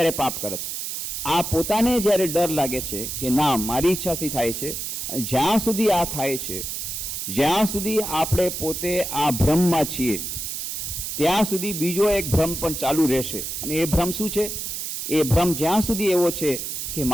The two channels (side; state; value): right; noise; hiss, 5 dB below the sound